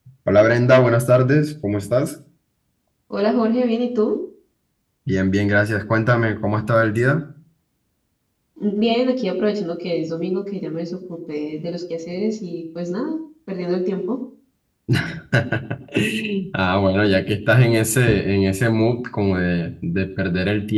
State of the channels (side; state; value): both; identical; correlation 1.00